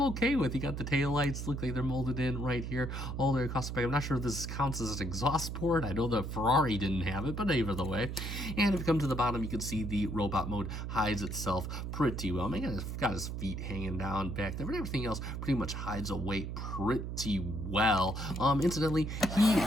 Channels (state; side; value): noise; right; hum, 5 dB below the sound